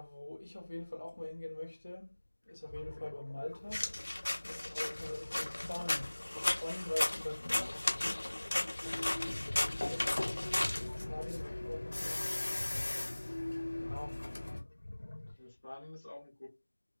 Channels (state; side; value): inverted; both; correlation -1.00